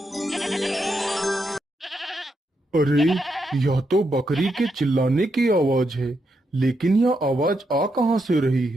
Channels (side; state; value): both; normal; correlation 0.82